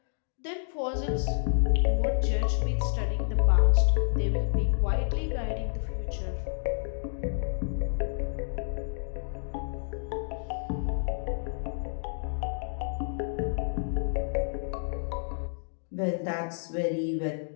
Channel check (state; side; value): silent; right; digital silence